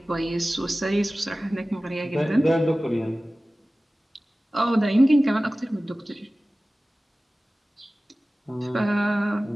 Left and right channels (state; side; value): normal; both; correlation 0.97